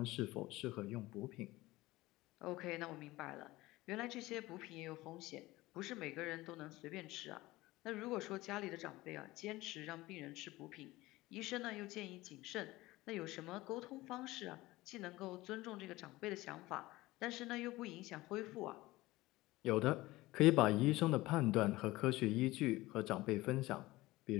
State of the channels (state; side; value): quieter; right; 19.0 dB